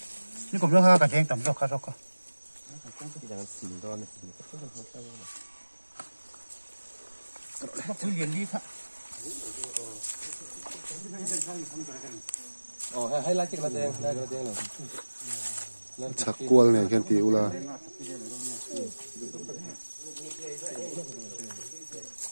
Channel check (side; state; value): both; inverted; correlation -1.00